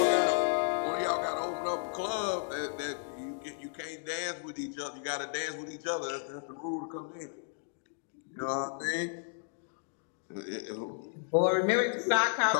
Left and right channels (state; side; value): silent; right; digital silence